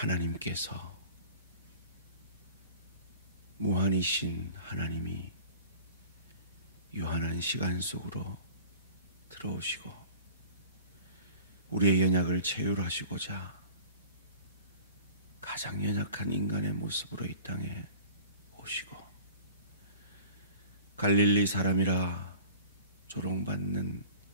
무한이신 하나님이 유한한 시간 속으로 들어오시고 우리의 연약을 체휼하시고자 가장 연약한 인간의 모습으로 이 땅에 오시고 갈릴리 사람이라 조롱받는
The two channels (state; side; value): inverted; both; correlation -0.43